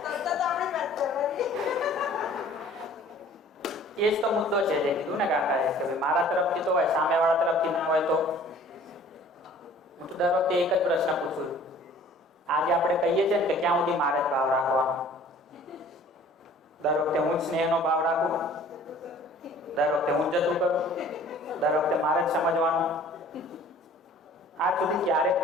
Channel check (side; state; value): both; normal; correlation 0.50